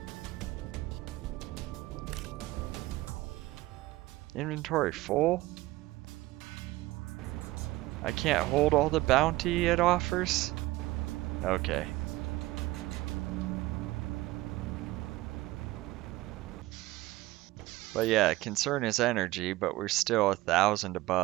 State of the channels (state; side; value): quieter; left; 18.6 dB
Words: Inventory full? I can't hold all the bounty it offers? Okay. But yeah, concern is energy, but we're still 1,000